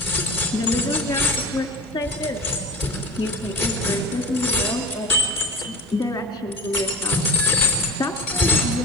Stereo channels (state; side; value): normal; both; correlation 0.32